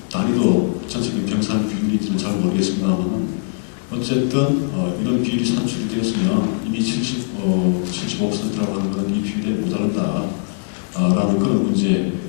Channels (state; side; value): silent; right; digital silence